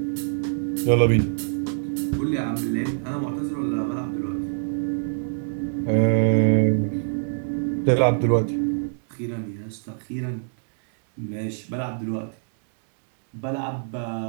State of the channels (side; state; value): left; silent; digital silence